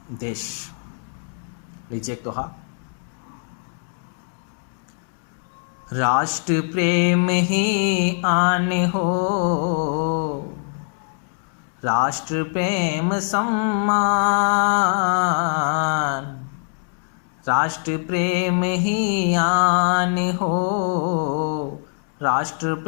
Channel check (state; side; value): silent; right; 61 dB below the other